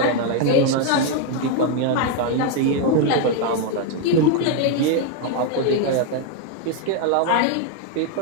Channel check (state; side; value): different; both; correlation 0.01